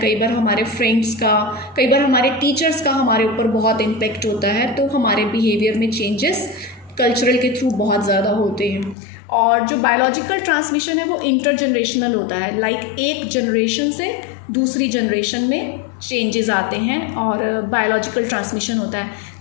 कई बार हमारे फ्रेंड्स का, कई बार हमारे टीचर्स का हमारे ऊपर बहुत इम्पेक्ट होता है। तो हमारे बिहेवियर में चेंजेस कल्चरल के थ्रू बहुत ज़्यादा होते हैं। और जो बायोलॉजिकल ट्रांसमिशन है वो इंटरजनरेशनल होता है, लाइक एक जनरेशन से दूसरी जनरेशन में चेंजेस आते हैं और बायोलॉजिकल ट्रांसमिशन होता है।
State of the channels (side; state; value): right; drops out; at 9.0 s